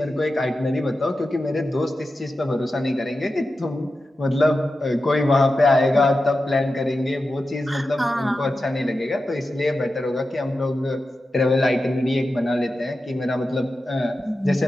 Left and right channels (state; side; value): normal; both; correlation 0.91